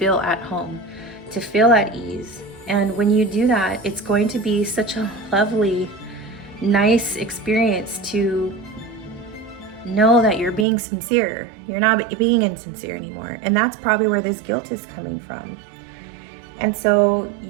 at home, to feel at ease. And when you do that, it's going to be such a lovely, nice experience to know that you're being sincere. You're not being insincere anymore. And that's probably where this guilt is coming from. And so,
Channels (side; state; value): left; drops out; at 10.7 s